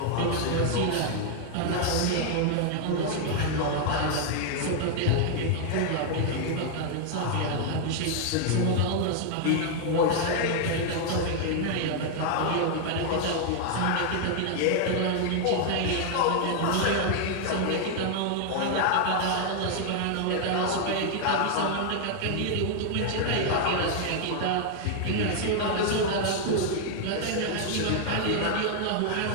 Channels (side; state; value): both; different; correlation 0.00